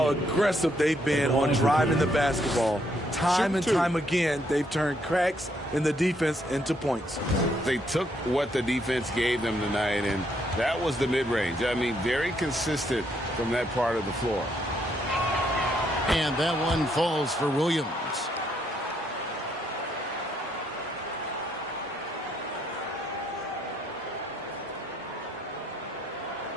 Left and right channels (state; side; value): normal; both; correlation 0.73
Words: aggressive they've been on driving the basketball. Time and time again, they've turned cracks in the defense into points. They took what the defense gave them tonight, and that was the mid-range. I mean, very consistent from that part of the floor. And that one falls for Williams.